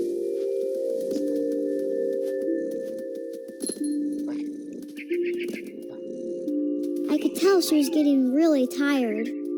I could tell she was getting really tired.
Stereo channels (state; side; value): identical; both; correlation 1.00